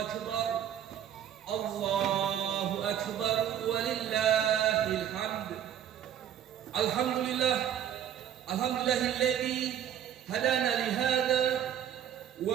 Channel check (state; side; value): quieter; left; 9.9 dB